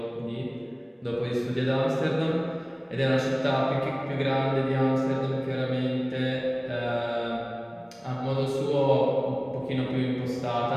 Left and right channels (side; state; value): both; identical; correlation 1.00